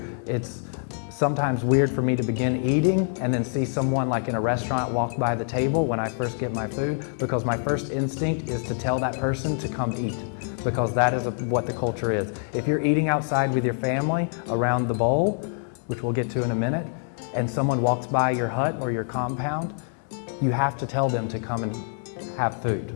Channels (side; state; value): right; silent; 57 dB below the other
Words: it's sometimes weird for me to begin eating and then see someone like in a restaurant walk by the table when I first get my food, because my first instinct is to tell that person to come eat, because that is what the culture is. If you're eating outside with your family around the bowl, which we'll get to in a minute, and someone walks by your hut or your compound, you have to tell them to come and have